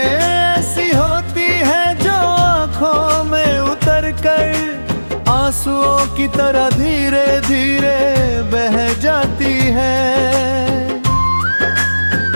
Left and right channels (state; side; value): inverted; both; correlation -1.00